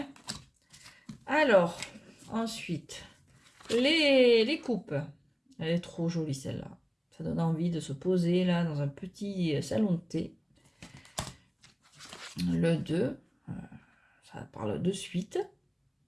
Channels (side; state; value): both; identical; correlation 1.00